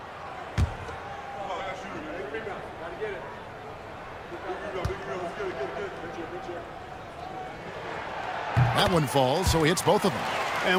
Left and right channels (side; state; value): both; identical; correlation 1.00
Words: That one falls, so he hits both of them.